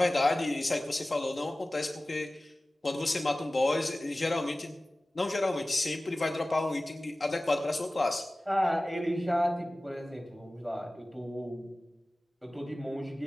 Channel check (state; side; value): normal; both; correlation 0.97